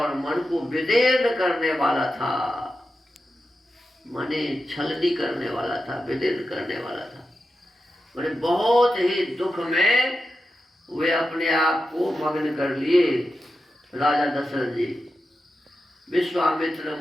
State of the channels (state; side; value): normal; both; correlation 0.90